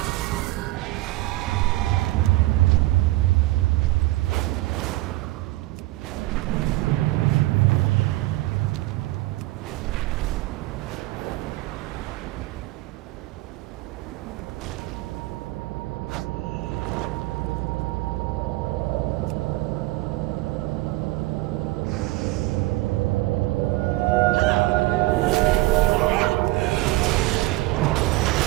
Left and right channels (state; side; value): quieter; left; 19.0 dB